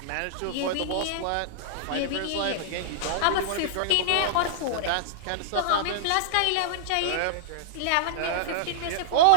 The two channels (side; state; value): both; different; correlation -0.01